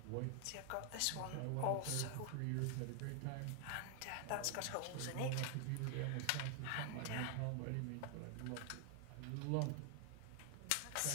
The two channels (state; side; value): different; both; correlation 0.00